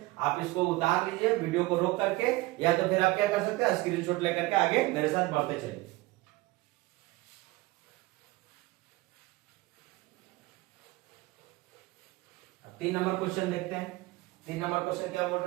आप इसको उतार लीजिए वीडियो को रोक करके, या तो फिर आप क्या कर सकते हैं स्क्रीनशॉट लेकर के आगे मेरे साथ बढ़ते चलिए। 3 नंबर क्वेश्चन देखते हैं। 3 नंबर क्वेश्चन क्या बोल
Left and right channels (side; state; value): left; quieter; 20.7 dB